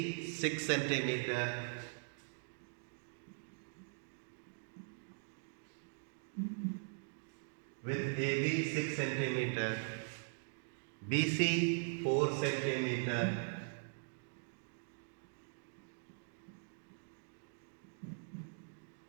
6 centimeter, with AB 6 centimeter, BC 4 centimeter,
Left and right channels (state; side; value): silent; left; digital silence